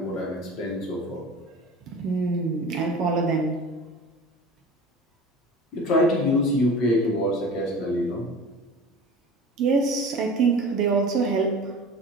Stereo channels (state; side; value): normal; both; correlation 0.38